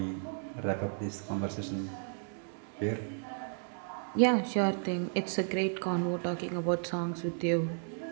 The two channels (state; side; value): silent; left; 55 dB below the other